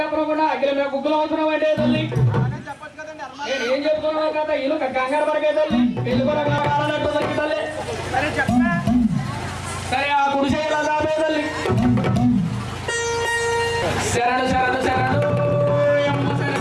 అగ్గిల మీద గుగ్గులు అవసరం అంటే తల్లి. అలాగే చెప్పొచ్చు కదండి. నేను ఏం చెప్తున్నావు కదా ఇల్లు కంగారు పడకే తల్లి, పెళ్లి కూడా కావాలన్నట్టు తల్లి తల్లి. సరే చెప్పే. సరే ఆ గుడిసె ఎలా దాపే తల్లి. శరణు శరణు శరణు యమ్మ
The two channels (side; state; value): both; identical; correlation 1.00